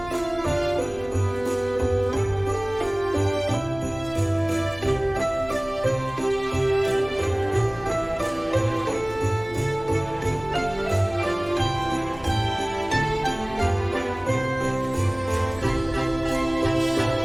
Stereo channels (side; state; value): left; noise; hum, 19 dB below the sound